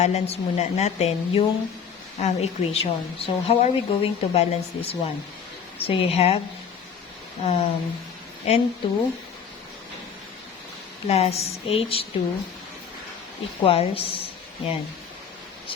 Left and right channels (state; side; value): quieter; right; 6.9 dB